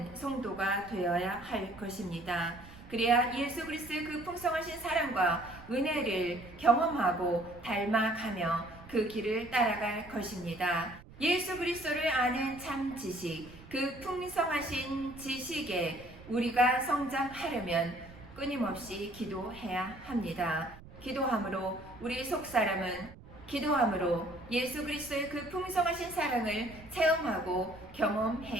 성도가 되어야 할 것입니다. 그래야 예수 그리스도의 그 풍성하신 사랑과 은혜를 경험하고 닮아가며 그 길을 따라갈 것입니다. 예수 그리스도를 아는 참 지식, 그 풍성하신 지식에 우리가 성장하려면 끊임없이 기도해야 합니다. 기도함으로 우리 속사람은 기도함으로 예수 그리스도의 그 풍성하신 사랑을 체험하고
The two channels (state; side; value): noise; right; rumble, 19 dB below the sound